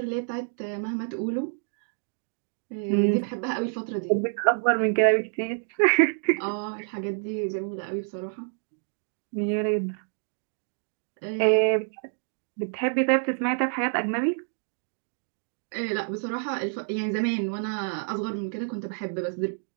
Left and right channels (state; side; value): silent; left; digital silence